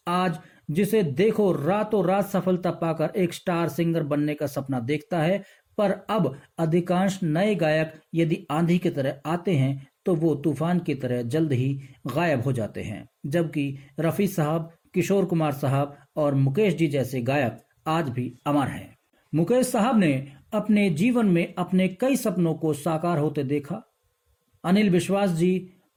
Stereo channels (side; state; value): both; identical; correlation 1.00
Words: आज जिसे देखो रातों रात सफलता पाकर एक स्टार सिंगर बनने का सपना देखता है, पर अब अधिकांश नए गायक यदि आंधी की तरह आते हैं तो वो तूफान की तरह जल्द ही गायब हो जाते हैं, जबकि रफी साहब, किशोर कुमार साहब और मुकेश जी जैसे गायक आज भी अमर हैं। मुकेश साहब ने अपने जीवन में अपने कई सपनों को साकार होते देखा। अनिल विश्वास जी,